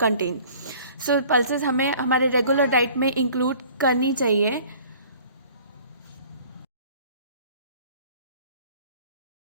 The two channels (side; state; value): both; inverted; correlation -0.51